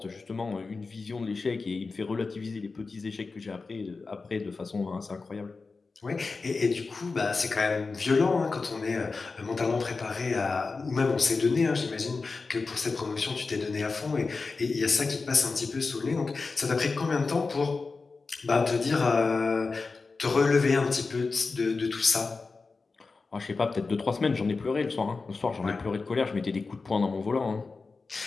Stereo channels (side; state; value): right; quieter; 4.2 dB